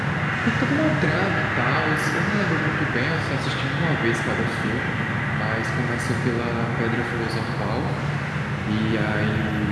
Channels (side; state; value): both; identical; correlation 1.00